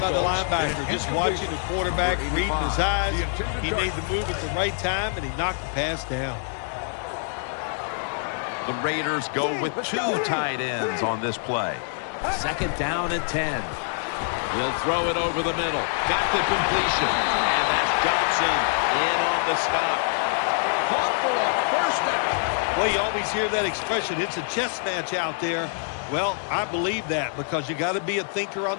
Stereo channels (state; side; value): silent; right; digital silence